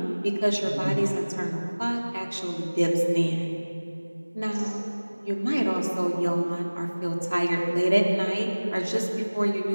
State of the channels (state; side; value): inverted; both; correlation -1.00